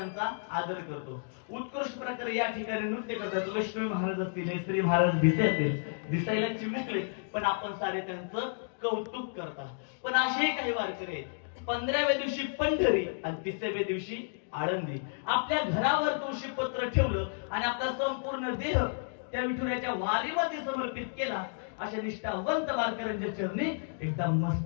आदर करतो. उत्कृष्ट प्रकारे या ठिकाणी नृत्य करतात. लक्ष्मी महाराज असतील, श्री महाराज भिसे असतील, दिसायला चिमुकले पण आपण सारे त्यांचं कौतुक करतात. पण असे काही वारकरी आहेत, 15व्या दिवशी पंढरी आणि 30व्या दिवशी आळंदी. आपल्या घरावर तुळशी पत्र ठेवलं आणि आपला संपूर्ण देह त्या विठुरायाच्या वारीमध्ये समर्पित केला. अशा निष्ठावंत वारकऱ्यांच्या चरणी एकदा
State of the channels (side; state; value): right; silent; digital silence